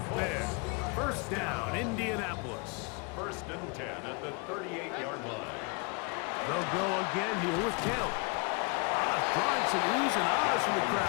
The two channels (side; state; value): right; quieter; 32.2 dB